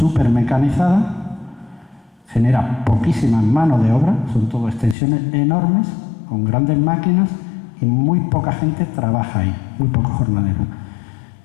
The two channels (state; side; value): drops out; right; at 5.0 s